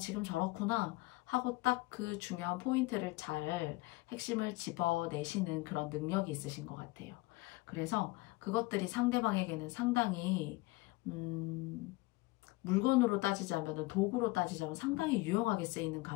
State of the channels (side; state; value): right; quieter; 21.7 dB